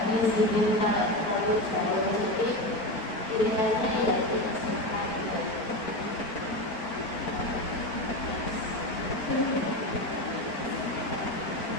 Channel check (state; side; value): late; right; 4.4 ms